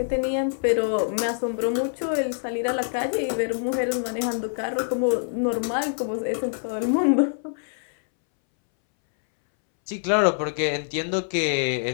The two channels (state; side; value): silent; right; 62 dB below the other